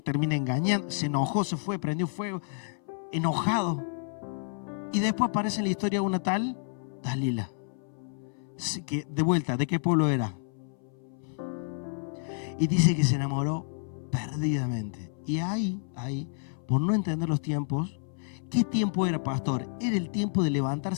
engañando, se enojó, se fue, prendió fuego, enojado. Y después aparece en la historia una tal Dalila, que de vuelta, ¿de qué pueblo era? Y dice que se enamoró perdidamente. Y ahí, por no entender los tiempos, ¿qué tiempo era, pastor? Era el tiempo de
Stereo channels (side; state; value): right; silent; 57 dB below the other